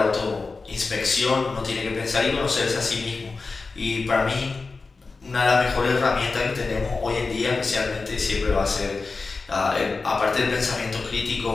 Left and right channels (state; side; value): quieter; right; 4.1 dB